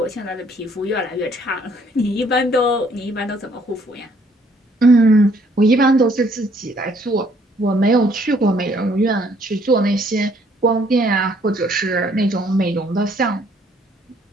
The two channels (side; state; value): both; normal; correlation 0.64